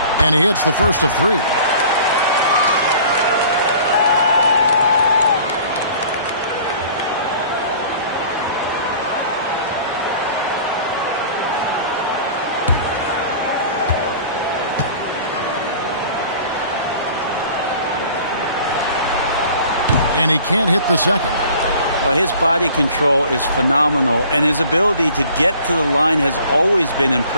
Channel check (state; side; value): inverted; both; correlation -0.47